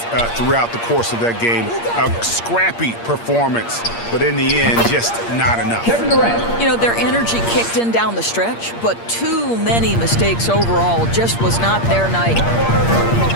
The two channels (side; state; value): right; late; 8.6 ms